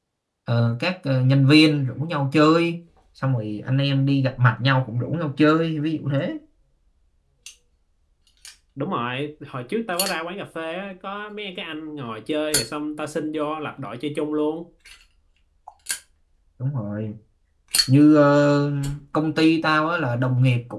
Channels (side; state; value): both; identical; correlation 1.00